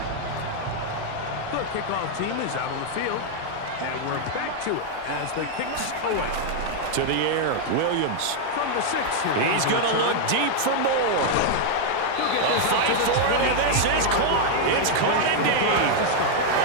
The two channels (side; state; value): both; different; correlation 0.00